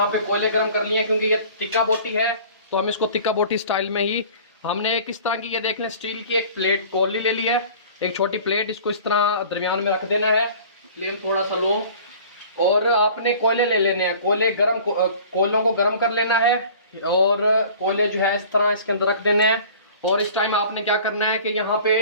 पे कोयले गर्म कर लिए हैं, क्योंकि ये तिक्का बोटी है, तो हम इसको तिक्का बोटी स्टाइल में ही हमने किस तरह की, ये देख लें स्टील की एक प्लेट कोली ले ली है, एक छोटी प्लेट, इसको इस तरह दरमियान में रख देना है। फ्लेम थोड़ा सा लो और आपने कोयले ले लेने हैं। कोयलों को गर्म कर लेना है और कोयले जो है इस तरह इसके अंदर रख देने हैं। और इस टाइम आपने क्या करना है कि यहाँ पे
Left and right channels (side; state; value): both; inverted; correlation -0.46